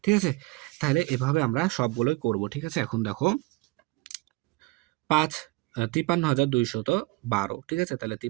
ঠিক আছে, তাহলে এভাবে আমরা সবগুলোই করব। ঠিক আছে, এখন দেখো 53,212, ঠিক আছে, তাহলে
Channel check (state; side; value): quieter; left; 22.4 dB